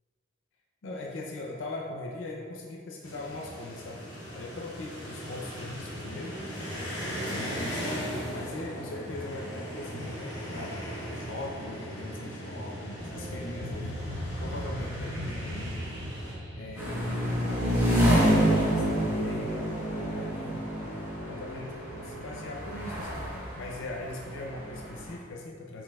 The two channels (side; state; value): both; normal; correlation 0.62